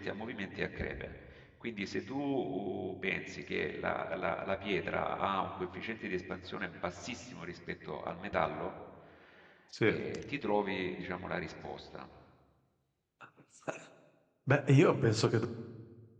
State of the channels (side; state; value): both; identical; correlation 1.00